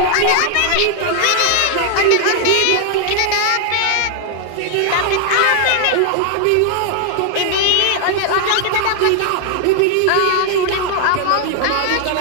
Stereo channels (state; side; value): different; both; correlation 0.00